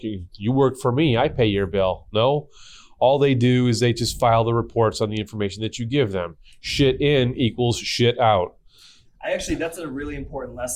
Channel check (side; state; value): both; identical; correlation 1.00